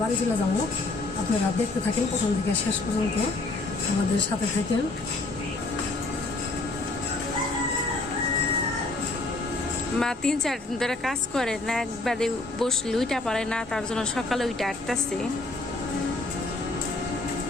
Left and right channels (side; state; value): right; quieter; 3.2 dB